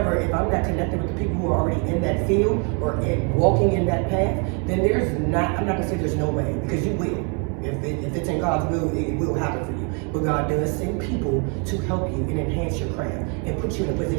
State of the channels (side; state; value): left; quieter; 36.9 dB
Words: if I'm not connected with the people who are already in that field or walking in that path, then I'm not gonna say there's no way, because you will. If it's in God's will, it will happen for you. But God does send people to help you and enhance your craft and put you in a